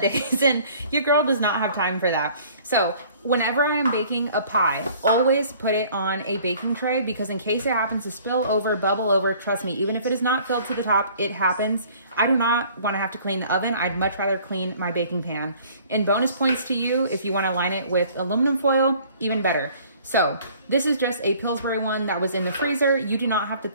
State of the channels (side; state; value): both; inverted; correlation -0.54